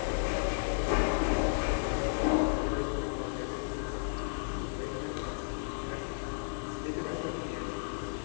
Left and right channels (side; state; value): right; silent; digital silence